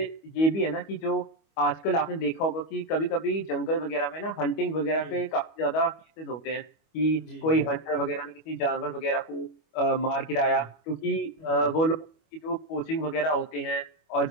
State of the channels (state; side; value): late; right; 25 ms